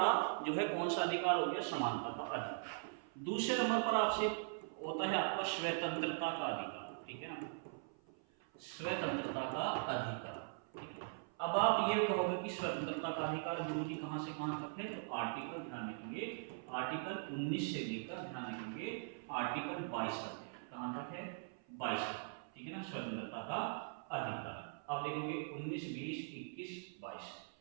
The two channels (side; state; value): left; silent; 50 dB below the other